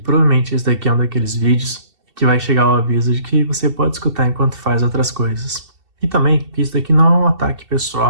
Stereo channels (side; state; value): left; late; 2.7 ms